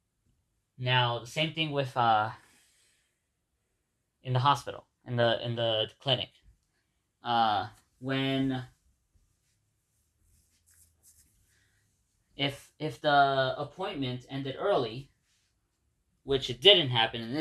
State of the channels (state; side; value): identical; both; correlation 1.00